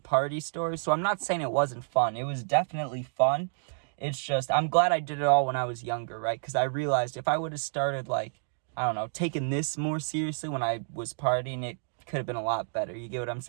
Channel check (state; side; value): silent; left; digital silence